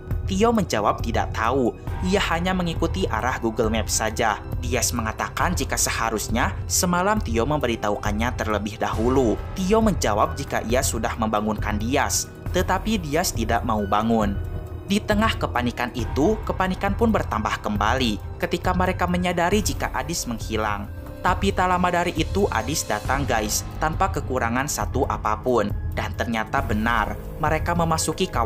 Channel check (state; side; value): identical; both; correlation 1.00